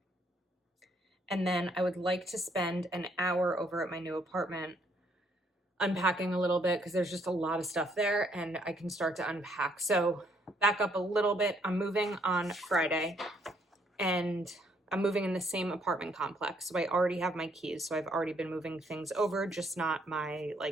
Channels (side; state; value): both; normal; correlation 0.69